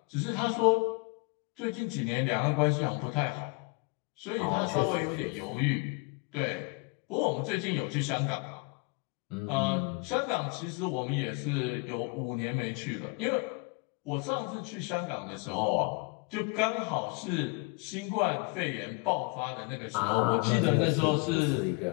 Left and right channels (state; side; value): quieter; right; 31.2 dB